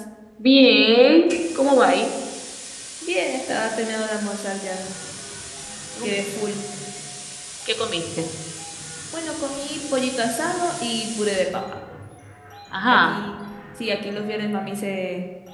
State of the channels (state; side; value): identical; both; correlation 1.00